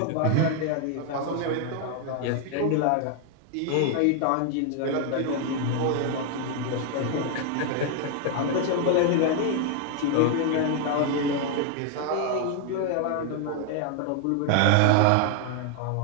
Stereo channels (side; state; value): both; different; correlation 0.00